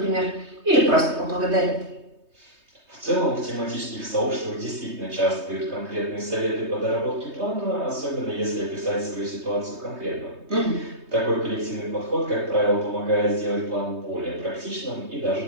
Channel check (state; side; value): late; left; 3.2 ms